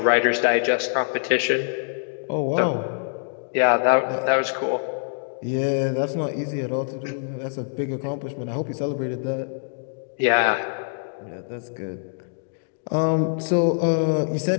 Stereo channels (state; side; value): silent; right; digital silence